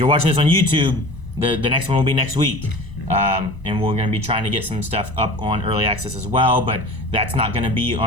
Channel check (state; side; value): late; right; 1.0 ms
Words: watching this on YouTube, the next one will be next week. And we're going to be trying to get some stuff up on early access as well, but that's not going to be